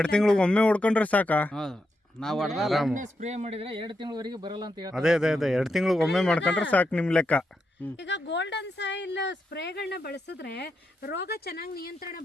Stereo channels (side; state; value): both; normal; correlation 0.84